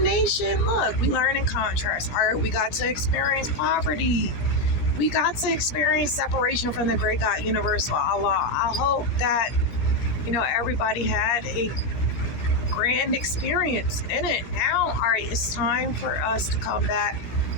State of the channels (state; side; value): late; right; 17 ms